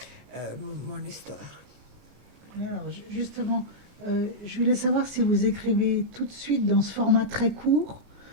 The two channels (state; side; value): late; left; 34 ms